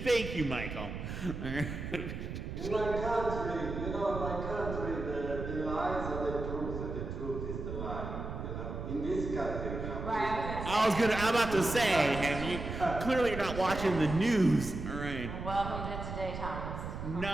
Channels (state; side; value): noise; right; rumble, 6 dB below the sound